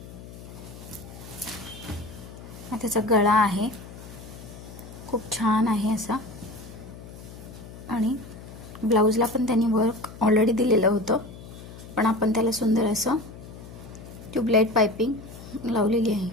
त्याचा गळा आहे, खूप छान आहे असा, आणि ब्लाऊजला पण त्यांनी वर्क ऑलरेडी दिलेलं होतं, पण आपण त्याला सुंदर असं ट्यूबलाईट पाइपिंग लावलेली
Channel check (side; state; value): left; noise; hum, 15 dB below the sound